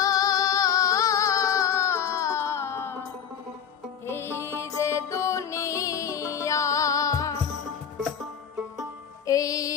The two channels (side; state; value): right; quieter; 8.1 dB